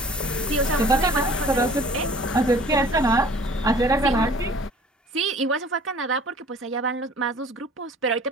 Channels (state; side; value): normal; both; correlation 0.49